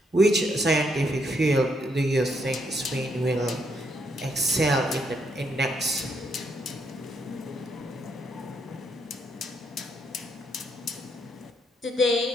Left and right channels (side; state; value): both; normal; correlation 0.75